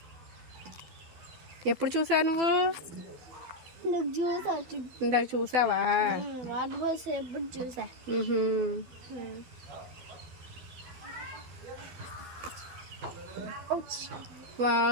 ఎప్పుడు చూసావు నువ్వు? ఇందాక చూసావా?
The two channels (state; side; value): late; left; 12 ms